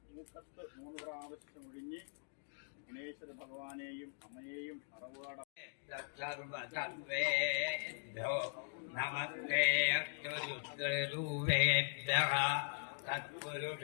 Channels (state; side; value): silent; right; digital silence